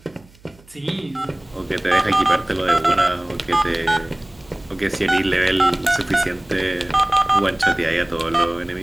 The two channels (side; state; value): right; noise; hum, 27 dB below the sound